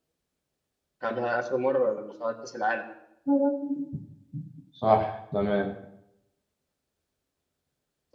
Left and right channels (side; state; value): both; identical; correlation 1.00